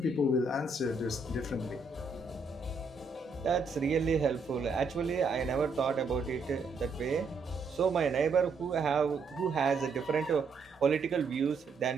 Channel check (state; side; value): quieter; left; 4.0 dB